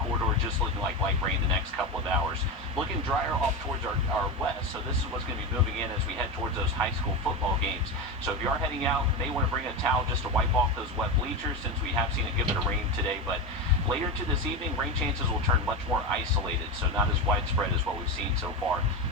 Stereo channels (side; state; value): both; normal; correlation 0.18